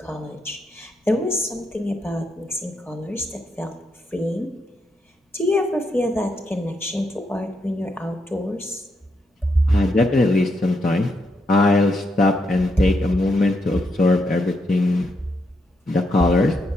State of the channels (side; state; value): both; normal; correlation 0.80